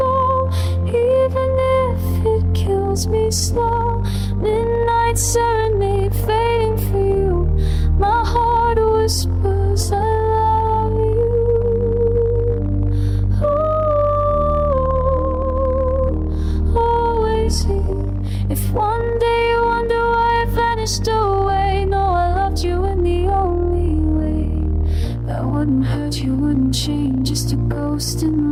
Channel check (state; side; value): identical; both; correlation 1.00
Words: even if it kills me slow. Midnight serenade fading for you. My heart whispers I love you. Ooh, always here. If one day you wonder why I vanished away, know I loved you in the only way that wouldn't hurt you, wouldn't change, just a ghost in